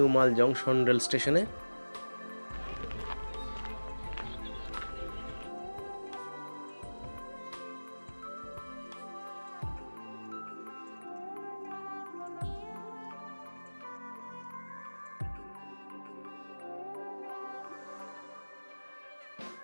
মাল জংশন রেল স্টেশনে।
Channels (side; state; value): both; inverted; correlation -1.00